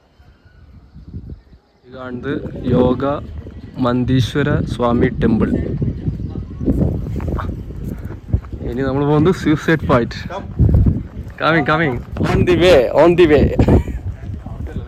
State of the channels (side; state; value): both; identical; correlation 1.00